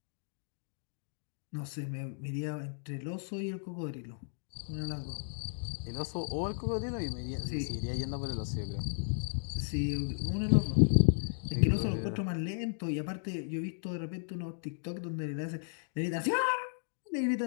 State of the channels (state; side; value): silent; right; digital silence